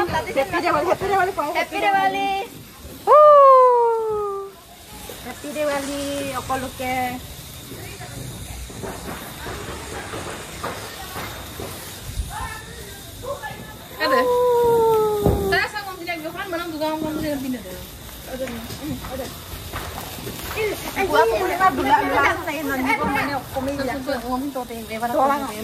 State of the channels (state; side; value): identical; both; correlation 1.00